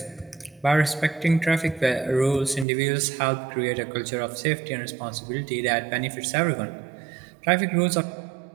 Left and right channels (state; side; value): drops out; left; at 2.7 s